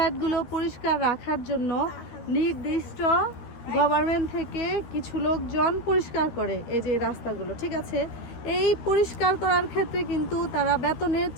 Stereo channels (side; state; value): right; late; 13 ms